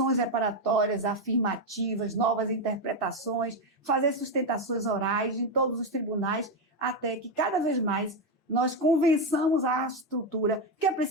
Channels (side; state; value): both; normal; correlation 0.08